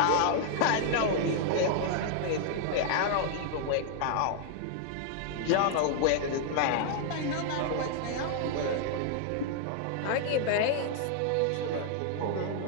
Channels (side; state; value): both; different; correlation 0.00